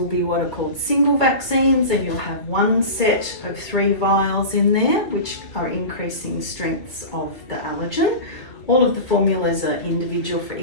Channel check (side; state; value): right; late; 2.3 ms